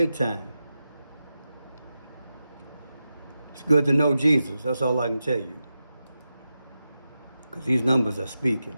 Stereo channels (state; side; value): inverted; both; correlation -0.91